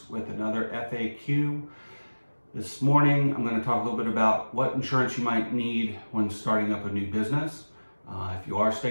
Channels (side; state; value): both; inverted; correlation -1.00